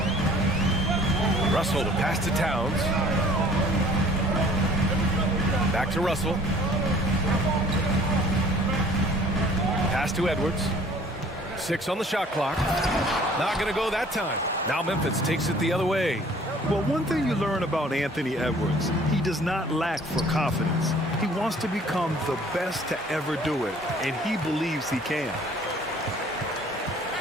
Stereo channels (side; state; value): both; normal; correlation 0.53